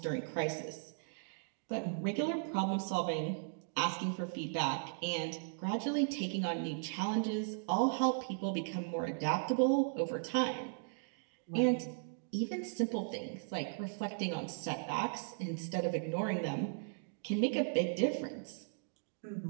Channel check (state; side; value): silent; left; digital silence